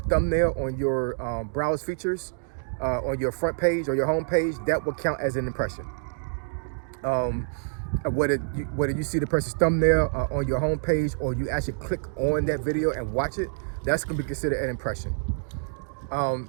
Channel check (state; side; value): silent; left; digital silence